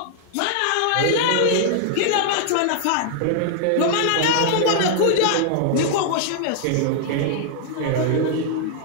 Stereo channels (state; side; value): different; both; correlation 0.00